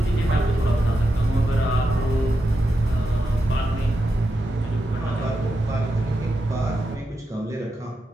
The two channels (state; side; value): normal; both; correlation 0.87